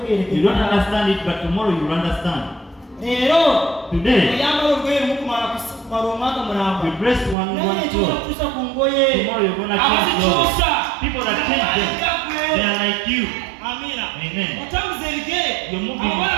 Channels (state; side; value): drops out; left; at 7.4 s